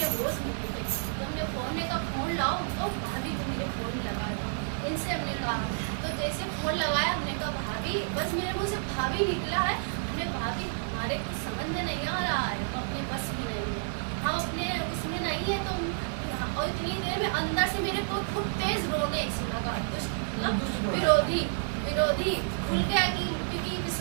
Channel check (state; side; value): silent; left; 58 dB below the other